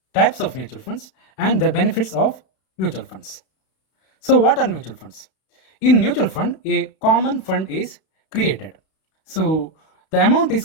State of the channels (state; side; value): late; right; 32 ms